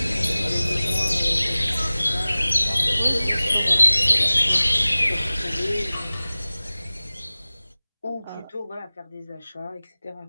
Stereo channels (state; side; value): inverted; both; correlation -0.98